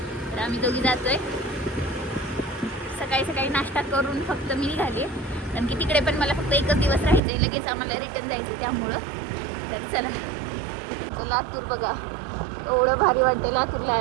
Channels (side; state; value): left; drops out; at 7.2 s